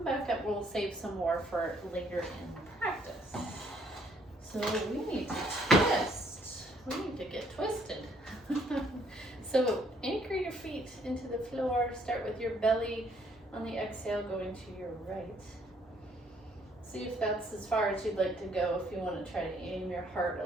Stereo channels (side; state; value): both; normal; correlation 0.66